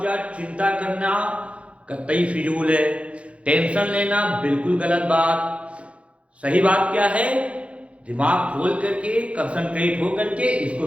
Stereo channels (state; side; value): late; left; 0.062 ms